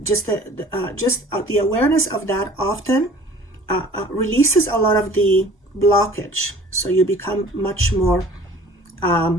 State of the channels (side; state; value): both; normal; correlation 0.49